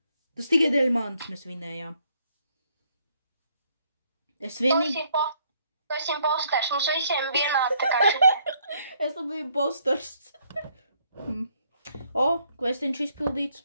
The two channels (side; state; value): both; inverted; correlation -0.69